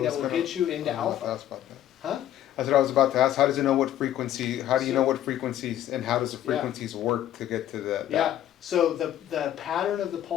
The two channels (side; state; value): right; quieter; 11.9 dB